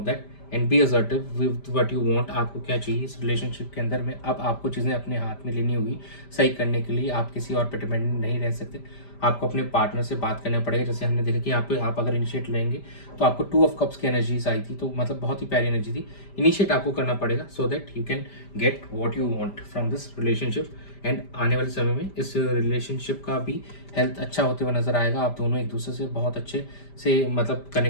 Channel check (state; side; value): late; right; 5.0 ms